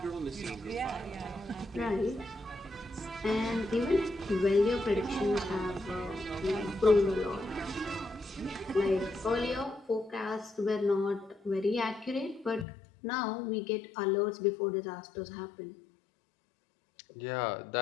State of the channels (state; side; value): drops out; right; at 12.7 s